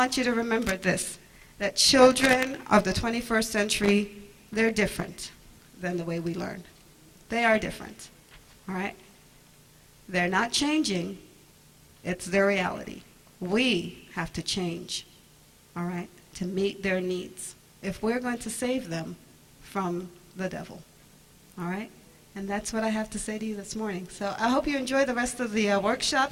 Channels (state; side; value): identical; both; correlation 1.00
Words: you to remember this, that children of the 21st century, they're different than the way we learn. They are different, all right? They're not changing. It's their reality. We have to change, all right, to meet their needs if we're going to save them from the devil, all right? And that's what I have to say to you this morning. So I hope you enjoy the rest of the